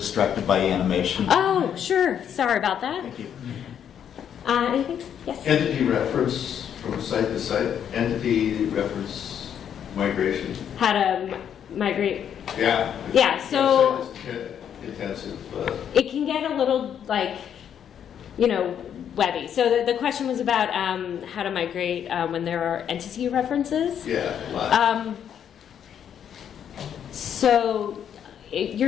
by animation. Oh, sure. Sorry about that. Thank you. Anything? Yes? Entity reference from site to site, entity reference migration. How to migrate. Yeah. Yeah, so- Intensive. It can get a little, like, you know, webby. So the question was about how to migrate when there are entity references. Yeah, a lot. So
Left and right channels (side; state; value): right; quieter; 8.9 dB